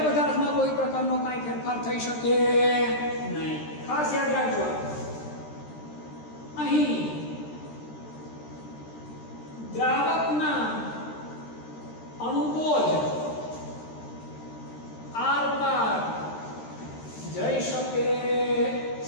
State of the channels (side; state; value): right; late; 13 ms